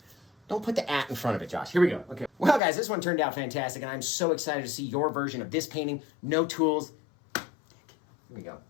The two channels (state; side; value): drops out; right; at 2.6 s